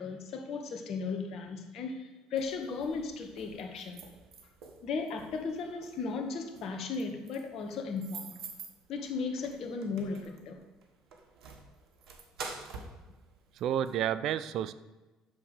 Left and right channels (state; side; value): normal; both; correlation 0.50